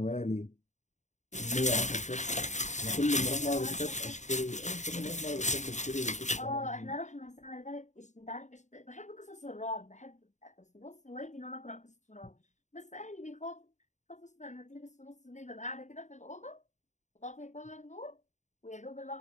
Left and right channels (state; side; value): late; right; 0.34 ms